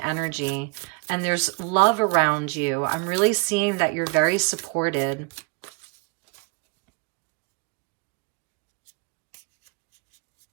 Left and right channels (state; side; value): quieter; left; 30.6 dB